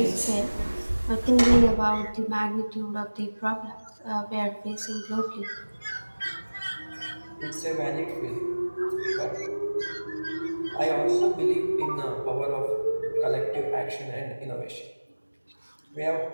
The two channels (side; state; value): both; inverted; correlation -1.00